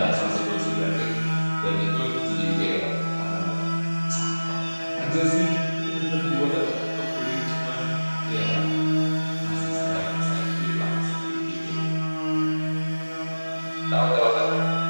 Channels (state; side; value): inverted; both; correlation -1.00